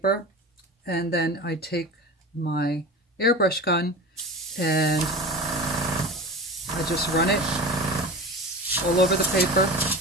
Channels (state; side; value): normal; both; correlation 0.32